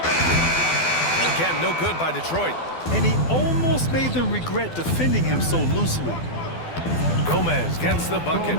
And again, no good by Detroit. And he almost made them regret defending him so loosely. Gomez gets the bucket.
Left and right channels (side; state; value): right; late; 12 ms